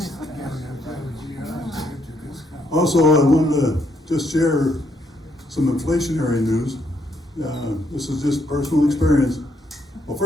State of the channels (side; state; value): both; normal; correlation 0.74